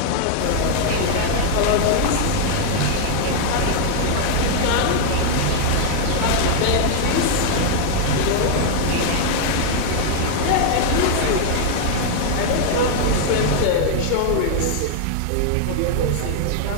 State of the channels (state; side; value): different; both; correlation 0.00